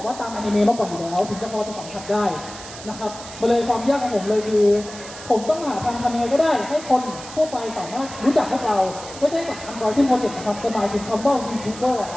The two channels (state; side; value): noise; right; hiss, 14 dB below the sound